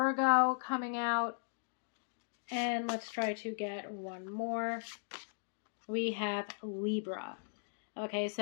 coming out. And let's try to get one more. We have Libra. Okay,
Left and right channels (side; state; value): right; silent; digital silence